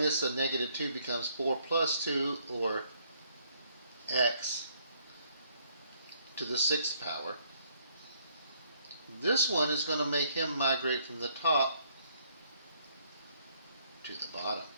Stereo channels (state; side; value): inverted; both; correlation -0.67